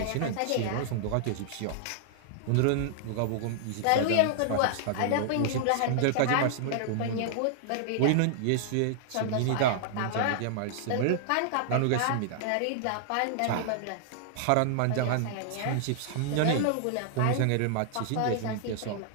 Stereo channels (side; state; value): both; different; correlation -0.01